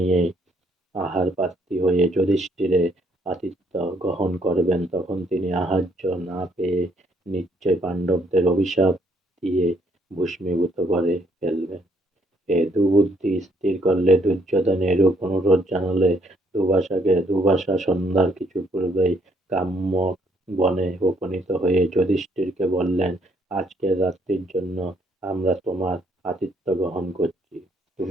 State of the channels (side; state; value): both; normal; correlation 0.69